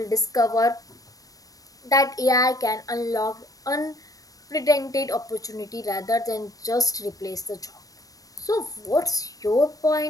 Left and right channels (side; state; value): right; late; 0.17 ms